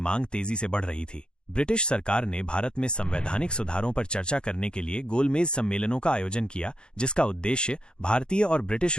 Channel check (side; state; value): right; late; 0.050 ms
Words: तेजी से बढ़ रही थी। ब्रिटिश सरकार ने भारत में संवैधानिक सुधारों पर चर्चा करने के लिए गोलमेज सम्मेलनों का आयोजन किया, जिसका उद्देश्य भारतीय और ब्रिटिश